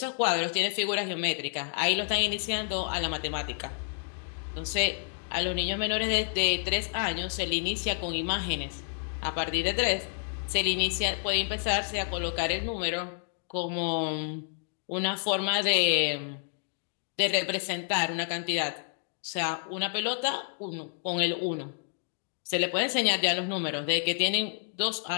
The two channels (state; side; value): silent; right; 58 dB below the other